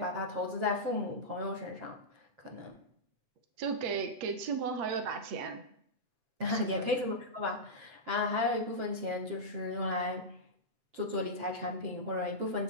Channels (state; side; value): late; left; 8.0 ms